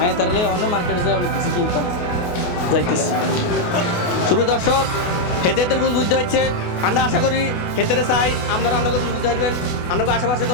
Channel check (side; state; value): right; late; 28 ms